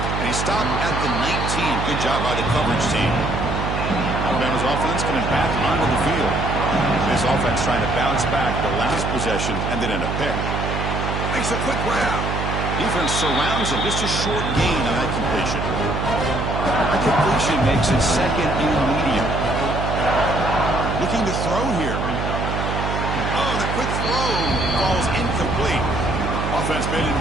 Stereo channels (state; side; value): noise; right; hum, 2 dB below the sound